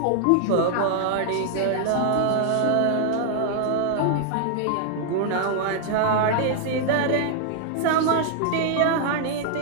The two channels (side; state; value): both; different; correlation 0.00